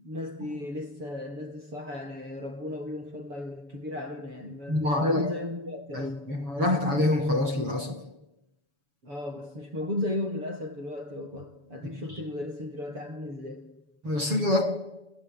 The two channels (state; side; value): late; left; 7.0 ms